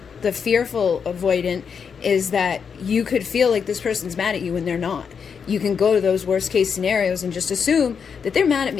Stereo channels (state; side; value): quieter; right; 6.5 dB